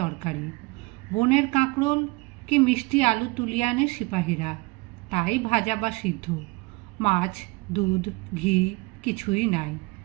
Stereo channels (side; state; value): left; quieter; 25.1 dB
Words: তরকারি। বনের কাঁকরোল কি মিষ্টি আলু তুলিয়া আনে সিপাহীরা, তাই ভাজা বা সিদ্ধ। মাছ, দুধ, ঘি কিছুই নাই।